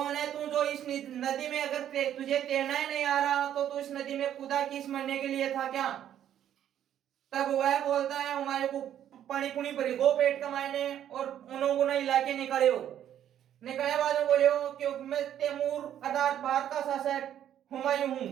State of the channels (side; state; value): left; quieter; 10.6 dB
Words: है तू जो इस नदी में अगर तुझे तैरना ही नहीं आ रहा तो तू इस नदी में कूदा किस मरने के लिए था क्या? तब वह बोलता है हुमायूं को पानी पुनी भरी गो पेट कमाने और उन्होंने इलाके निकले हो निकले बाद में बोले हो कि मैं तैमूर अर्थात भारत का शासक हुमायूं हूं।